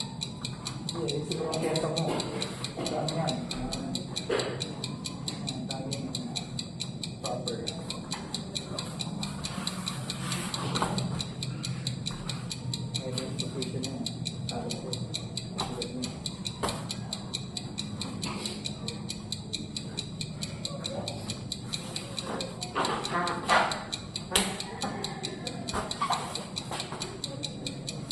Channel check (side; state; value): both; identical; correlation 1.00